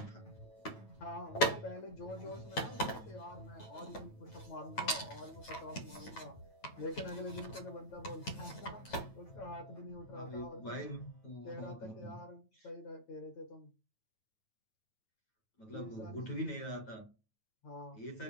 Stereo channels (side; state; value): right; late; 9.1 ms